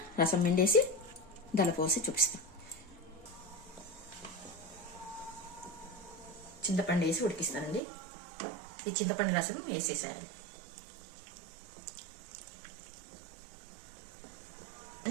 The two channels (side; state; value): left; drops out; at 7.8 s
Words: రసం పిండేసి దానిలో పోసి చూపిస్తాం. చింతపండు వేసి ఉడికిస్తానండి. ఈ చింతపండు రసం వేసేసేయాలి